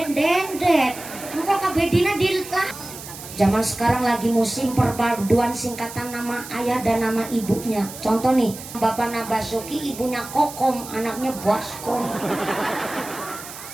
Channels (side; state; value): right; noise; hiss, 13 dB below the sound